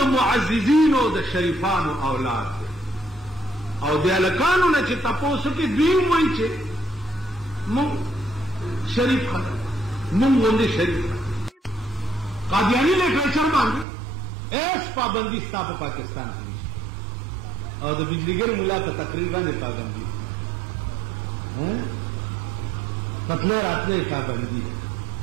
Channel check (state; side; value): drops out; left; at 13.9 s